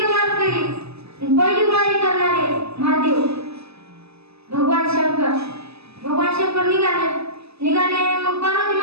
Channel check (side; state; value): left; late; 0.79 ms